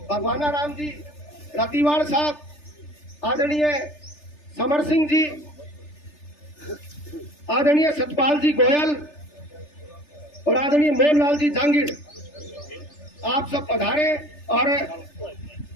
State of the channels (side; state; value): right; late; 3.3 ms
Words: भगवानाराम जी रतिवाल साहब, आदरणीय समर सिंह जी, आदरणीय सतपाल जी गोयल और आदरणीय मोहनलाल जी जांगीर, आप सब पधारे और